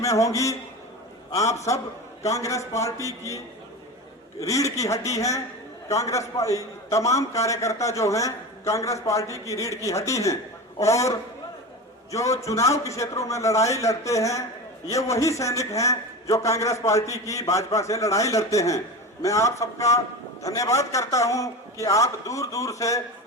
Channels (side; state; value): both; normal; correlation 0.27